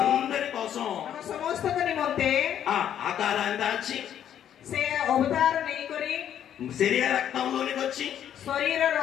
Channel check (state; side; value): quieter; right; 10.0 dB